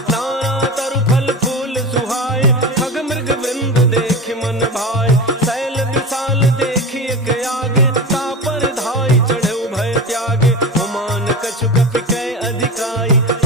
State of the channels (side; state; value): both; normal; correlation 0.27